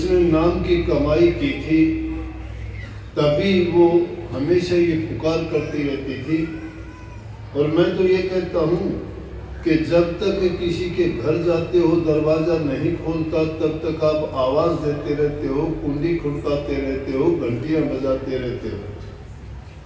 नाम की कमाई की थी, तभी वो हमेशा ये पुकार करती रहती थी। और मैं तो ये कहता हूँ कि जब तक किसी के घर जाते हो दरवाज़ा नहीं खोलता तब तक आप आवाज़ देते रहते हो, कुंडी खड़काते रहते हो, घंटियाँ बजाते रहते हो,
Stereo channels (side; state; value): both; identical; correlation 1.00